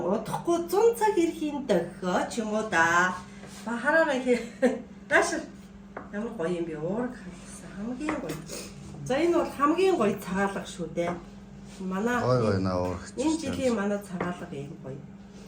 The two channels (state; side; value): identical; both; correlation 1.00